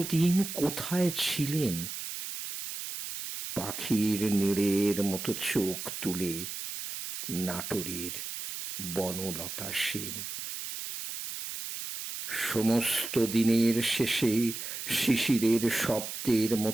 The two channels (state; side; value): noise; right; hiss, 7 dB below the sound